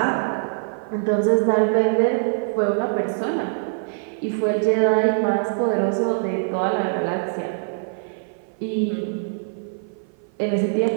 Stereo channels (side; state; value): left; silent; 55 dB below the other